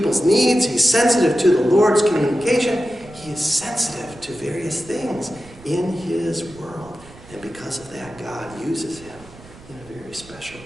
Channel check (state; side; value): noise; right; rumble, 21 dB below the sound